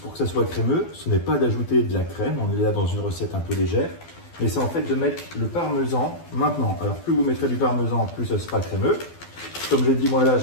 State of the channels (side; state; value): right; late; 12 ms